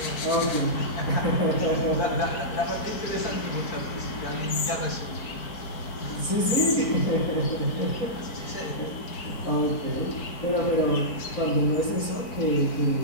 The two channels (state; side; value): late; right; 4.6 ms